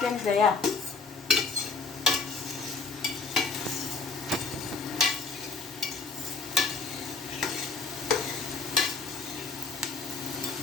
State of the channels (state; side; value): quieter; right; 4.4 dB